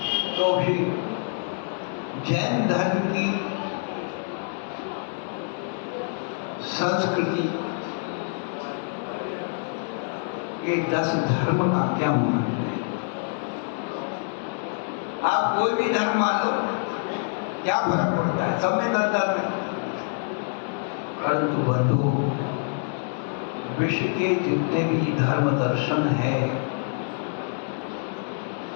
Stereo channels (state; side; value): silent; right; 60 dB below the other